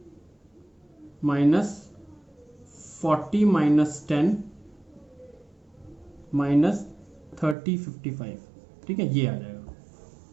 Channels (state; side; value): drops out; left; at 7.6 s